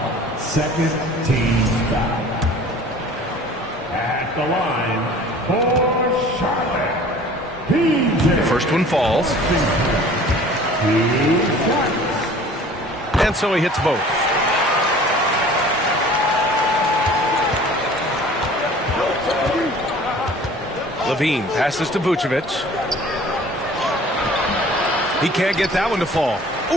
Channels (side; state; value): both; normal; correlation 0.47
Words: Second team foul. At the line for Charlotte. The first one falls. And so he hits both. Levine passes to Vucevic. He can't get that one to fall.